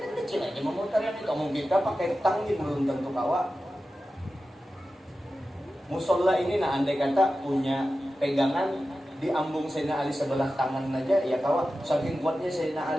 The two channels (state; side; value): normal; both; correlation 0.93